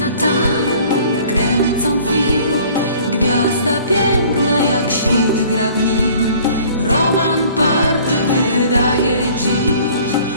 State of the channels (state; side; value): inverted; both; correlation -0.52